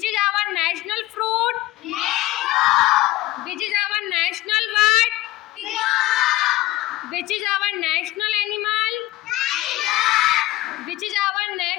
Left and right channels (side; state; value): right; quieter; 16.8 dB